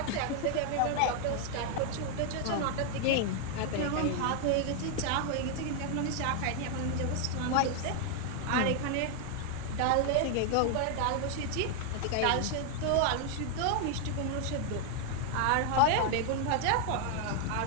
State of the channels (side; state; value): both; different; correlation 0.00